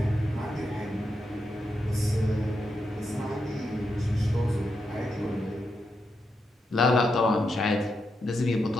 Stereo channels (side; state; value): both; normal; correlation 0.84